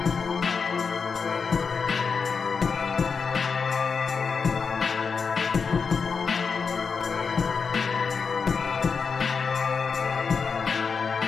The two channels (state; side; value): quieter; right; 5.5 dB